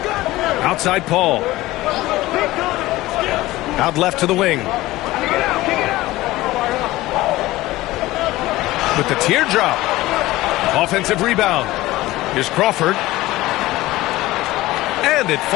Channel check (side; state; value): right; quieter; 17.9 dB